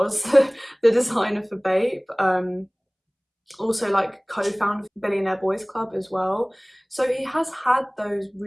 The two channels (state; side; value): identical; both; correlation 1.00